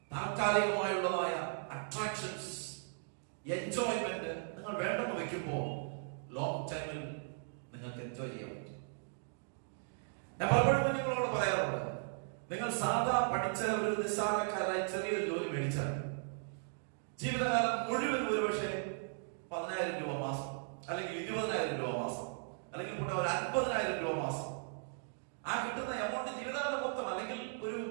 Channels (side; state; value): left; silent; digital silence